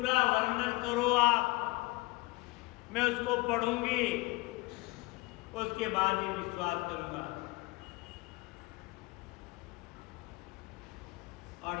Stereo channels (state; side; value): quieter; right; 23.3 dB